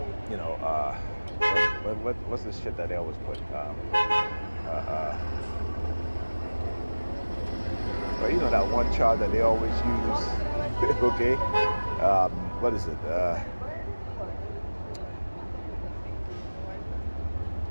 what's this shit that they always put? That one charge that they always use, okay? What is it?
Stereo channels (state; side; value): inverted; both; correlation -1.00